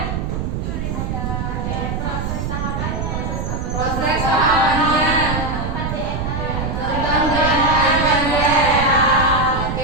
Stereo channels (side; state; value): right; noise; rumble, 3 dB below the sound